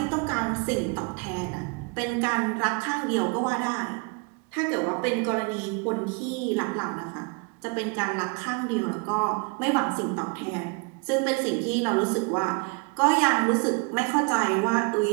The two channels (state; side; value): quieter; left; 31.7 dB